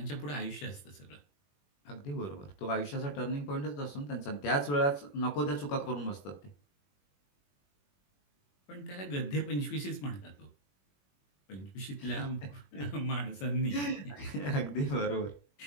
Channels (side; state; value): right; late; 21 ms